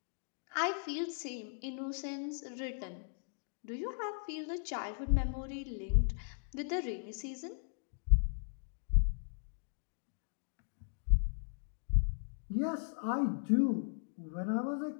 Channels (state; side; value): silent; right; digital silence